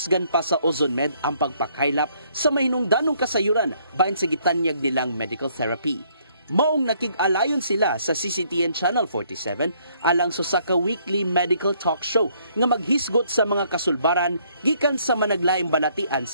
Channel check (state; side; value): inverted; both; correlation -0.67